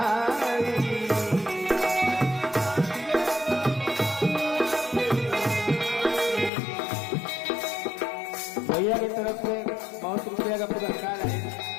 भैया की तरफ से बहुत रुपया का पुरस्कार है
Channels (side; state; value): right; drops out; at 6.5 s